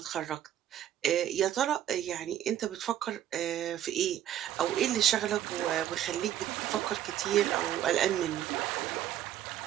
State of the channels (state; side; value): quieter; left; 11.4 dB